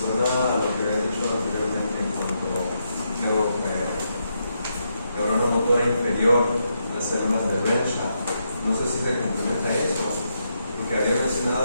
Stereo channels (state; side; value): inverted; both; correlation -0.81